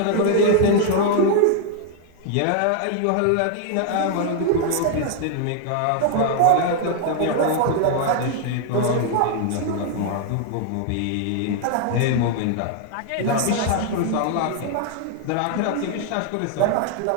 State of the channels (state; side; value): different; both; correlation 0.00